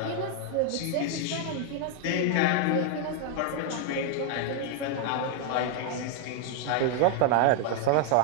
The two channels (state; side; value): different; both; correlation 0.00